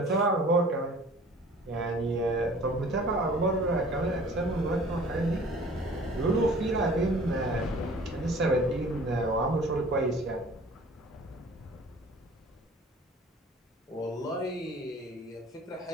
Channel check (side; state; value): both; normal; correlation 0.48